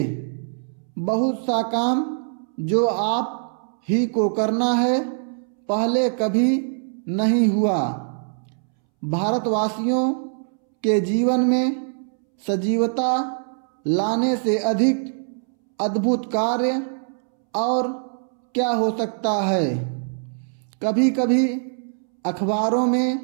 बहुत सा काम जो आप ही को करना है, पहले कभी नहीं हुआ। भारतवासियों के जीवन में सजीवता लाने से अधिक अद्भुत कार्य और क्या हो सकता है। कभी कभी अखबारों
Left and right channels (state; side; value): silent; left; 63 dB below the other